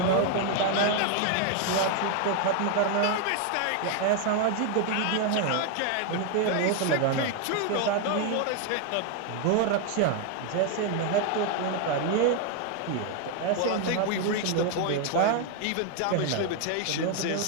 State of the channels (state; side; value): different; both; correlation 0.01